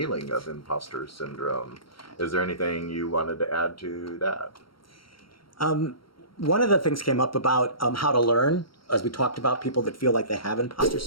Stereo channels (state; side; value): late; right; 0.74 ms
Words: of imposter syndrome. Is there anything you wanted to add to that? One of the things came up about how to learn, as we talked about people that feel like they have imposter